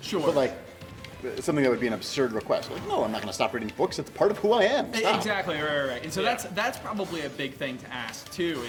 Sure. But like, something that would be an absurd request. Like, no, I'm not going to stop reading books. It's part of who I am. Stop. Exactly, right. And so Yeah. that's probably a big thing to ask too.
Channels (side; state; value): both; identical; correlation 1.00